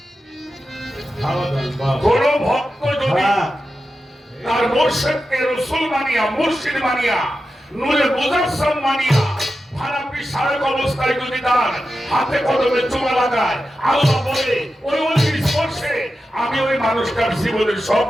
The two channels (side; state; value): both; normal; correlation 0.91